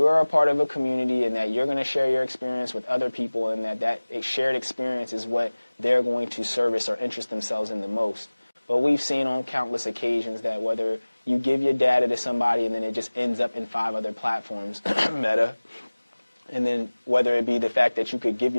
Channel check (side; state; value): both; inverted; correlation -1.00